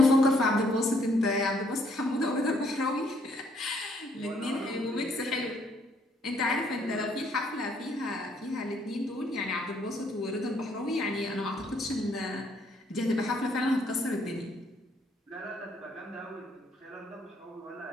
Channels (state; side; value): normal; both; correlation 0.68